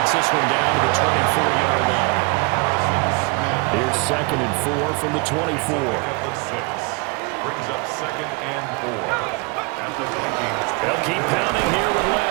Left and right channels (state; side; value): quieter; left; 28.8 dB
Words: this one down to the 24-yard line. Here's 2nd and 4 from the 24. Brings up 2nd and 4. At the Vikings. They'll keep pounding here with